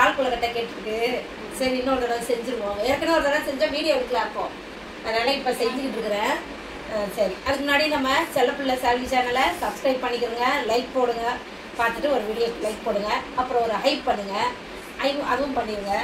கொழுக்கட்டை கேட்டுருக்கு. சரி இன்னொரு தடவை செஞ்சுருவோம். ஏற்கனவே ஒரு தடவை செஞ்சா வீடியோ எடுக்கலாம் அப்போ, அதனால இப்ப செஞ்சுக்கிட்டு இருக்கிறேன். சரி, அதுக்கு முன்னாடி நம்ம செல்லப்பிள்ளை சால்வி சேனலை சப்ஸ்கிரைப் பண்ணிக்கிறோங்க, லைக் போடுங்க, பார்த்துட்டு ஒரு வீடியோ லைக் போடுங்க, அப்புறம் ஒரு ஹைப் பண்ணுங்க, அதுவும் பண்ணிடுங்க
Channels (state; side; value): identical; both; correlation 1.00